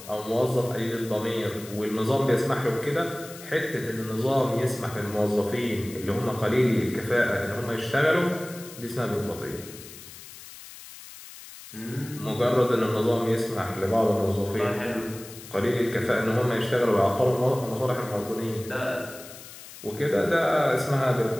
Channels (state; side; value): noise; left; hiss, 16 dB below the sound